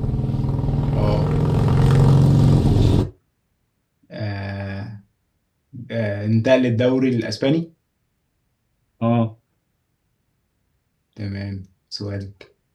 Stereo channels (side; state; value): both; identical; correlation 1.00